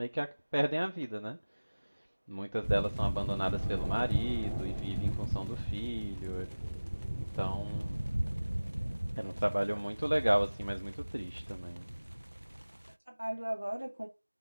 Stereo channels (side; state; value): both; inverted; correlation -1.00